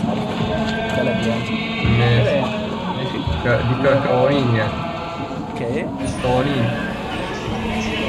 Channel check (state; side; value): identical; both; correlation 1.00